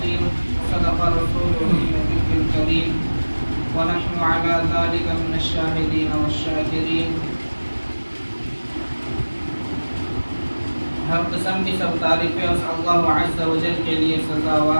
وصدق رسوله النبي الكريم ونحن على ذلك من الشاهدين والشاكرين. ہر قسم کی سب تعریفیں اس اللہ عز و جل کے لیے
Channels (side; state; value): both; inverted; correlation -1.00